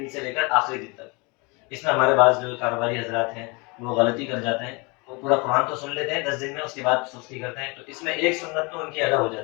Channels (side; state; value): right; quieter; 28.9 dB